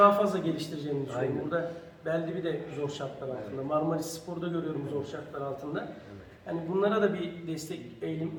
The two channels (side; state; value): both; identical; correlation 1.00